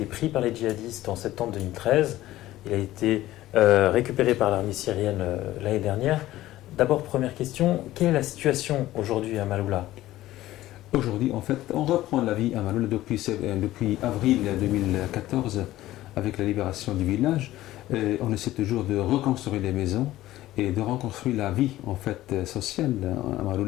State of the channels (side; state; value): right; quieter; 15.4 dB